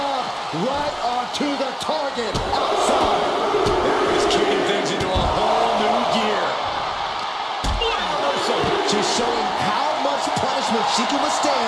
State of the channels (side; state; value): both; identical; correlation 1.00